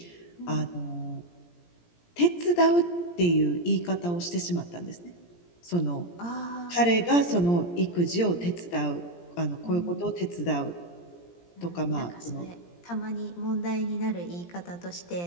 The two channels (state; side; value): late; right; 17 ms